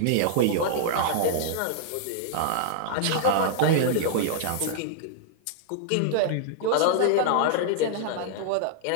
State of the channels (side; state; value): both; different; correlation -0.01